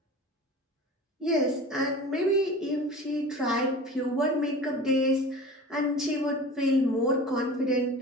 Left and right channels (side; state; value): both; normal; correlation 0.37